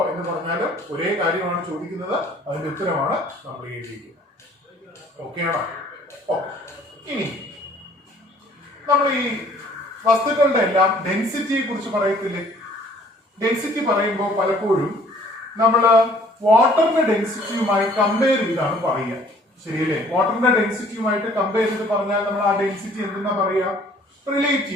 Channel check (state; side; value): normal; both; correlation 0.56